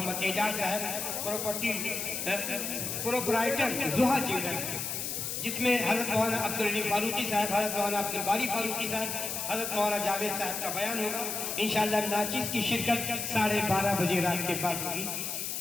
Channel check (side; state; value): left; noise; hiss, 3 dB below the sound